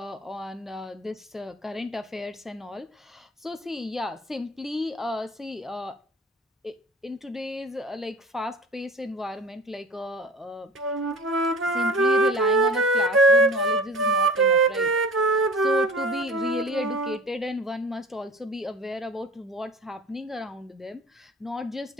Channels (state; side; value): normal; both; correlation 0.41